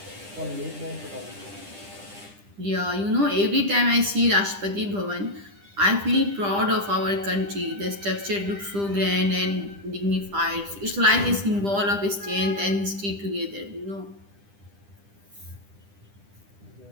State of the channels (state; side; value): late; left; 10 ms